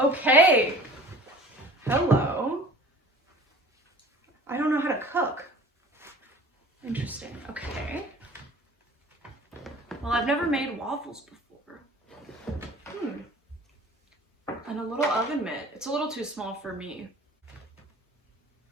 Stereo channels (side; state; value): both; normal; correlation 0.45